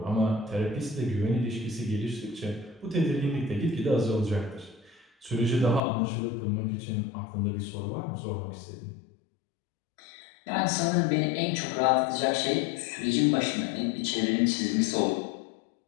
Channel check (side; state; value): right; drops out; at 5.8 s